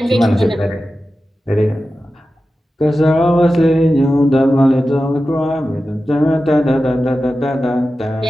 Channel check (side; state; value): both; normal; correlation 0.93